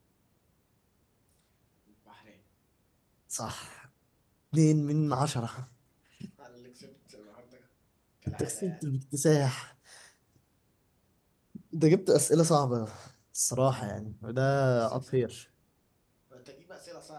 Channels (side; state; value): both; identical; correlation 1.00